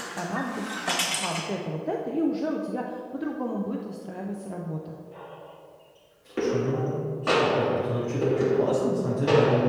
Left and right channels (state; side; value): identical; both; correlation 1.00